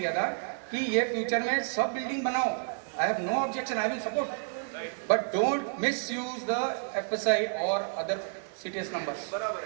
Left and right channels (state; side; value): silent; left; digital silence